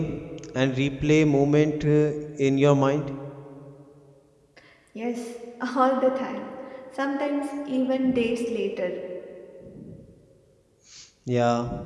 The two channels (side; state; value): both; identical; correlation 1.00